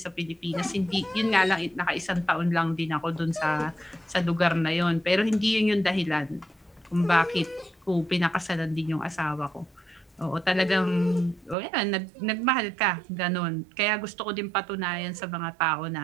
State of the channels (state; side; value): drops out; left; at 11.6 s